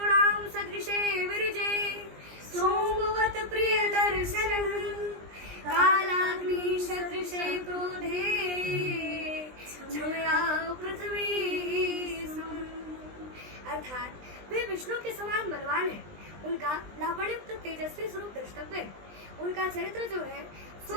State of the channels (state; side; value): late; left; 20 ms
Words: सदृशे विरजे सोमवत प्रिय दर्शनः कालाग्नि सदृशे क्रोधे छमया पृथ्वी सम। अर्थात वे विष्णु के समान बलवान है, उनका लावण्युक्त तेजस्वी स्वरूप द्रष्टव्य है। उनका चरित्र जो है